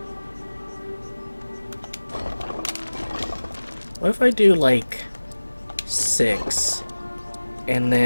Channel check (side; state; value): both; inverted; correlation -1.00